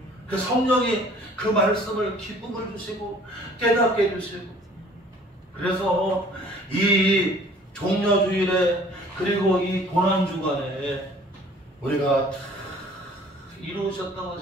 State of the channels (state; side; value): normal; both; correlation 0.53